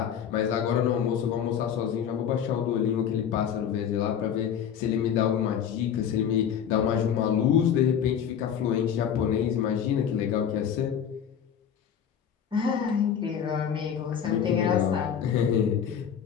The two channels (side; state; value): right; quieter; 8.4 dB